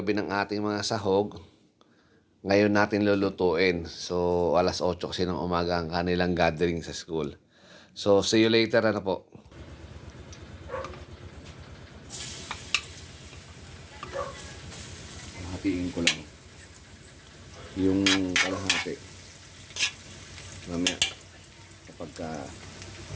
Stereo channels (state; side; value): identical; both; correlation 1.00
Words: ng ating mga sahog. Ngayon natin lulutuin. So, alas 8 kasi ng umaga ang kanilang gathering sa school. So, see you later na po. Hatiin ko lang yung kalahati. Mamaya, kapag